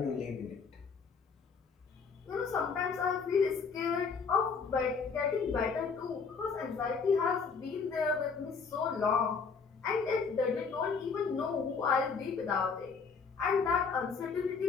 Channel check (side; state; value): right; quieter; 5.3 dB